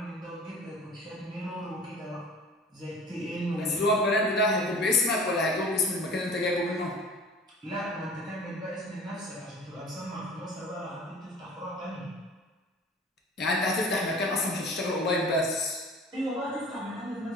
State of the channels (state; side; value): normal; both; correlation 0.43